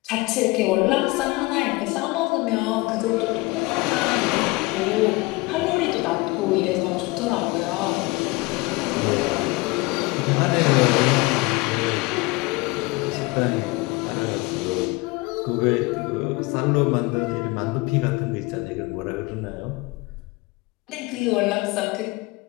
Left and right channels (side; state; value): right; quieter; 23.9 dB